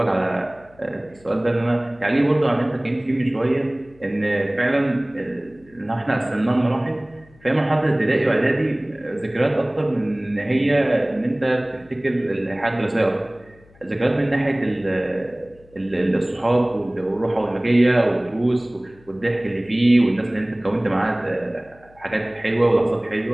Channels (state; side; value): noise; left; hum, 28 dB below the sound